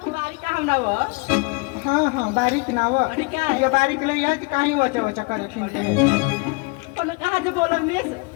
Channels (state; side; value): quieter; right; 28.9 dB